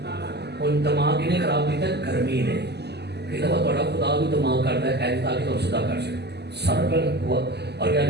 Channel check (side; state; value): left; late; 0.49 ms